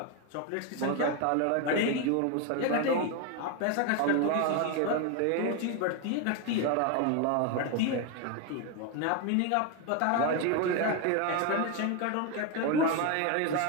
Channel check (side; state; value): both; different; correlation 0.02